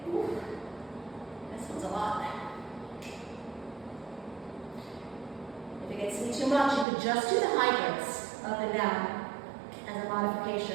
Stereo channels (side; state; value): left; drops out; at 6.9 s